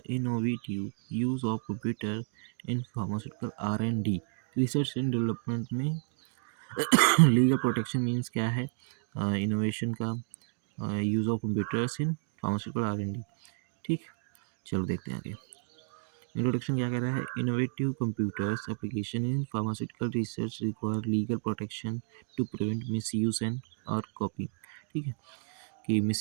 innovative use of computer in pharmaceutical R&D, research and development में लीगल प्रोटेक्शन मीन्स क्या है, इनोवेशन का use of computers in pharmaceutical R&D। ठीक, चलो देखते हैं आगे। इंट्रोडक्शन क्या कह रहा है, innovative computers application in pharmaceutical research require legal protection to prevent misuse and और कॉपी। ठीक है, कि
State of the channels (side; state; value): left; silent; digital silence